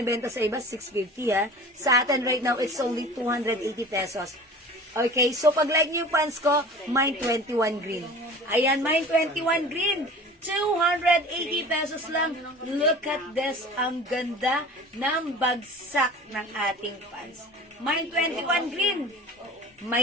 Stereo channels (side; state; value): both; normal; correlation 0.40